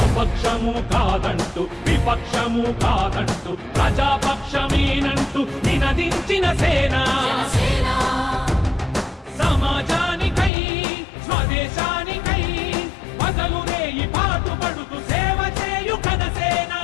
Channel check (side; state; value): right; drops out; at 10.5 s